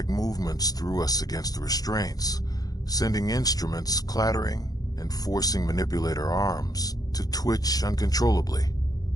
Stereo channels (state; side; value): late; right; 0.18 ms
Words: movements threw us against the restraints, sending instruments clattering and forcing manipulator arms to twitch uncontrollably.